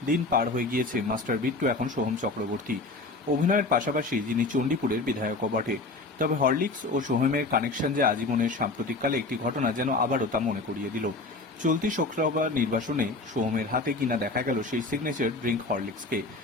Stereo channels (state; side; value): quieter; right; 3.3 dB